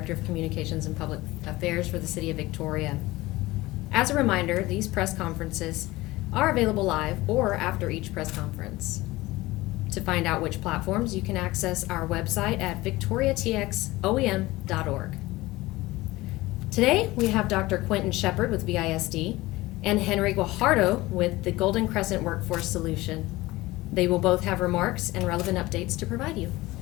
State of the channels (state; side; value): quieter; right; 19.3 dB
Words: of Communications and Public Affairs for the City of Victoria. As a reminder, these press conferences are available live or after each press conference. To find out which platforms, you can access our website at victoriatxoem.org. Today, we have Dr. Quentin Shepard with VISD and Henry Guajardo with the Golden Crescent Workforce Solution. They will both have remarks and relevant updates to provide you.